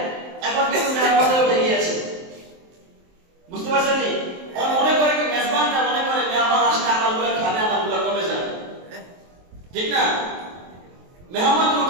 এখন কিন্তু মেহমানদারি উঠে গিয়েছে। বুঝতে পারছেন নি? মনে করে কি মেজবানটা মনে করে মেহমান আসলে আমারগুলো খাবে, আমারগুলো কমে যাবে, ঠিক না? মেহমান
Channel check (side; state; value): left; late; 23 ms